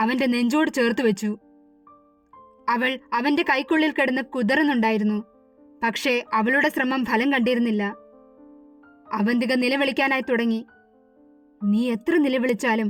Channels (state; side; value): identical; both; correlation 1.00